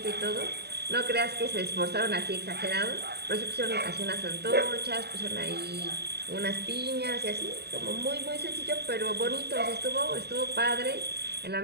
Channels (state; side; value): late; left; 0.48 ms